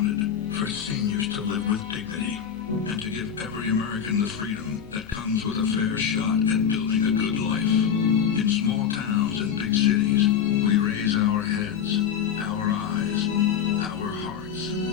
For seniors to live with dignity. And to give every American the freedom that comes with a fair shot at building a good life. In small towns and big cities, we raise our heads, our eyes, our hearts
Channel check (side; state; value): right; quieter; 8.2 dB